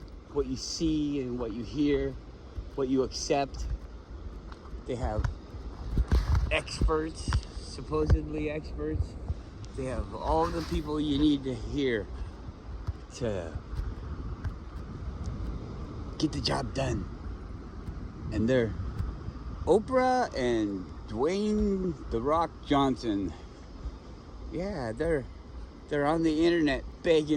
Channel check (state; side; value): identical; both; correlation 1.00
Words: what you see and what you hear, what you accept. They have experts, supposedly experts. They have all the people you need to hear to get the job done. And they're Oprah and Dwayne "The Rock" Johnson. Yeah, they're on the internet